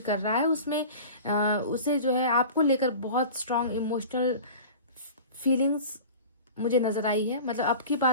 रहा है, उसमें उसे जो है आपको लेकर बहुत स्ट्रांग इमोशनल फीलिंग्स मुझे नज़र आई है। मतलब अब की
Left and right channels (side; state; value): both; inverted; correlation -0.37